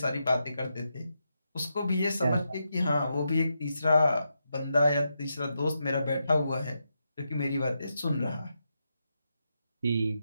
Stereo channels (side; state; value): both; inverted; correlation -0.85